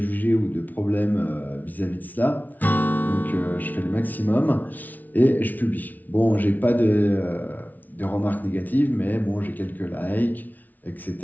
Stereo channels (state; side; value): late; right; 0.079 ms